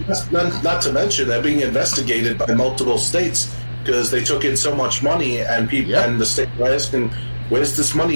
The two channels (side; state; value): both; inverted; correlation -1.00